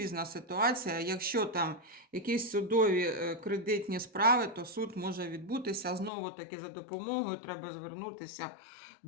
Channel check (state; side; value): drops out; right; at 6.1 s